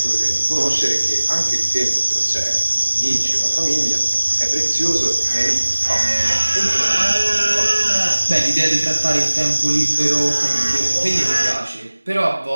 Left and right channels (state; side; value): inverted; both; correlation -1.00